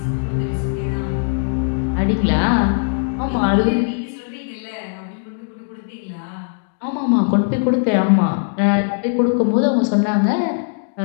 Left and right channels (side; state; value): right; silent; digital silence